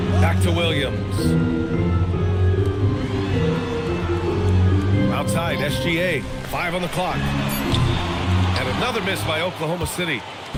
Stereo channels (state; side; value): identical; both; correlation 1.00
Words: Back to Williams. Outside, SGA, 5 on the clock. And another miss by Oklahoma City.